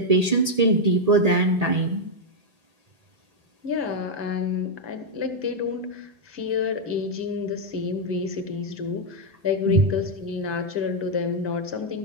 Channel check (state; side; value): late; left; 1.8 ms